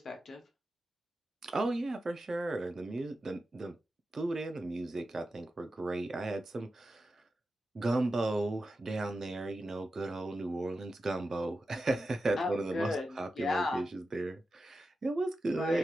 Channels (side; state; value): both; normal; correlation 0.91